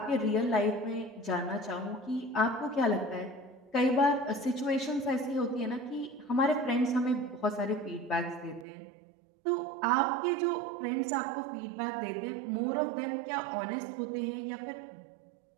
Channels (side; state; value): left; drops out; at 8.7 s